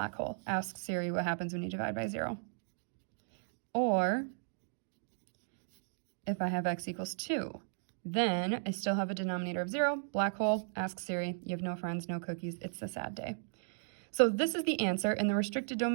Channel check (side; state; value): left; silent; digital silence